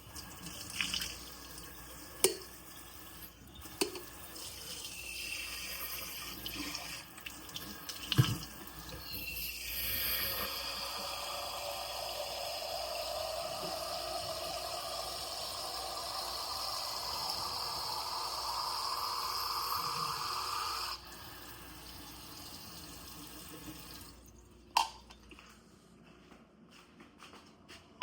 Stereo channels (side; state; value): both; identical; correlation 1.00